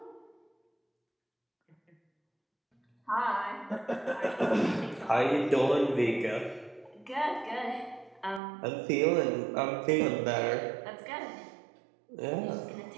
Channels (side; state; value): left; drops out; at 8.4 s